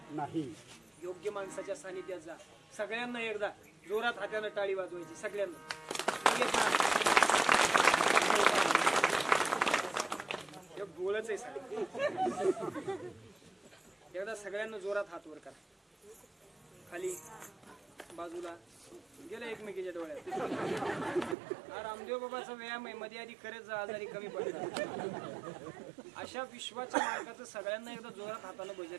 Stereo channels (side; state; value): left; drops out; at 21.4 s